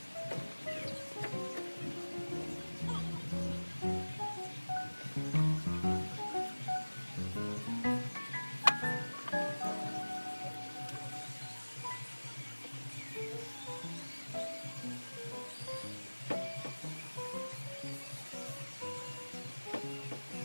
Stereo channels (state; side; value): inverted; both; correlation -1.00